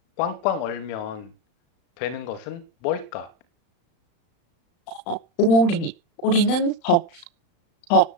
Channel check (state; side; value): late; right; 35 ms